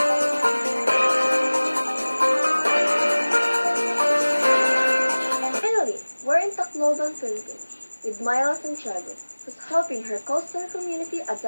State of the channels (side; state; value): both; inverted; correlation -1.00